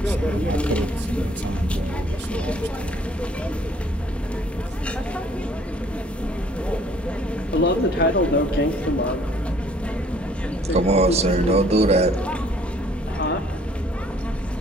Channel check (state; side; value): normal; both; correlation 0.60